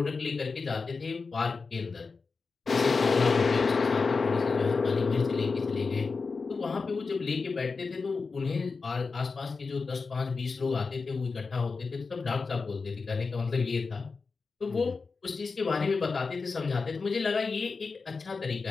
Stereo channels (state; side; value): quieter; right; 4.5 dB